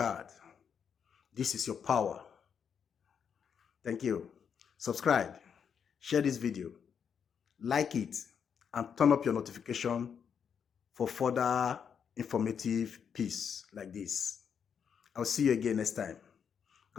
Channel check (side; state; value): right; quieter; 7.3 dB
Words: This is your power. Thank you. Subscribe, share this video, like it, and turn up your notification for further informative piece like this. I'll see you again next time.